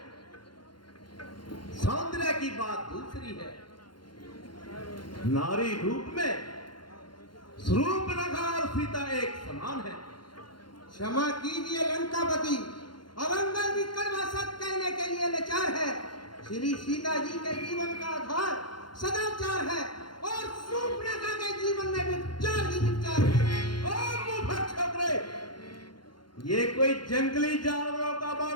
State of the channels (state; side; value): late; right; 0.71 ms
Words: सौंदर्य की बात दूसरी है। नारी रूप में स्वरूपलगा और सीता एक समान है। क्षमा कीजिए लंकापति, अवंगल विकर्मा सत कहने के लिए लाचार है। श्री सीता जी के जीवन का आधार सदाचार है और शूर्पणखा के जीवन में विचार ही विचार है। ओ मुफत छोकरे, ये कोई जंगली जानवरों का